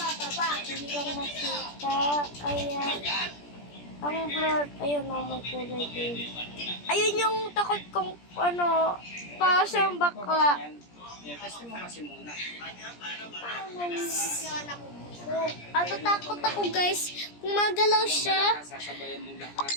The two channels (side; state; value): right; late; 17 ms